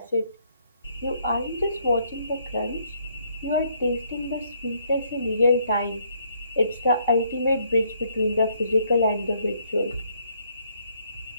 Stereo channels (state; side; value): inverted; both; correlation -0.69